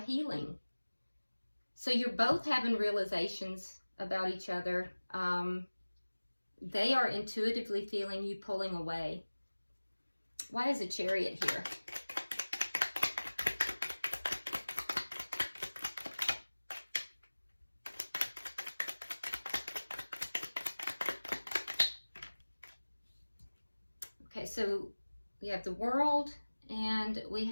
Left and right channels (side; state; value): both; inverted; correlation -1.00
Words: healing. So you're both having realizations about each other. They are intuitively feeling you pulling away. Why is a Chariot here? Okay, so we have the World and we